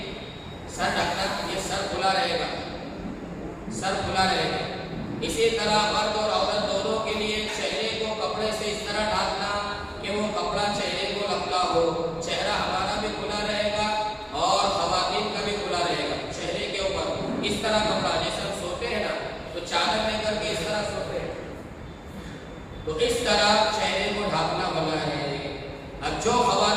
سر ڈھکنا، یہ سر کھلا رہے گا، سر کھلا رہے گا. اسی طرح مرد اور عورت دونوں کے لیے چہرے کو کپڑے سے اس طرح ڈھانپنا کہ وہ کپڑا چہرے کو لگتا ہو. چہرہ ہمارا بھی کھلا رہے گا اور خواتین کا بھی کھلا رہے گا. چہرے کے اوپر اس طرح کپڑا، جیسے ہم سوتے ہیں نا تو چادر لے کر کے اس طرح سوتے ہیں، تو اس طرح چہرے کو ڈھانپنا منع ہے. اب جو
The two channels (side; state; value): both; identical; correlation 1.00